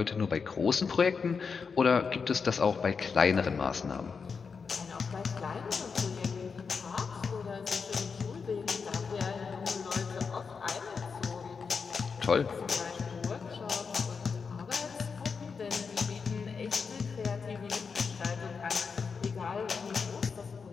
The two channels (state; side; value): quieter; right; 5.5 dB